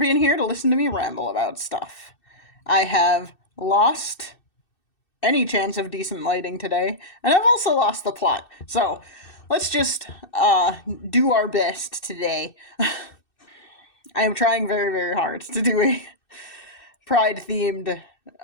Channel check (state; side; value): late; right; 2.6 ms